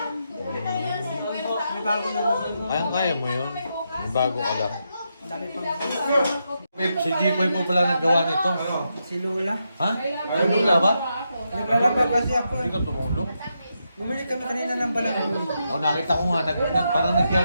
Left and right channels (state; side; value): inverted; both; correlation -0.83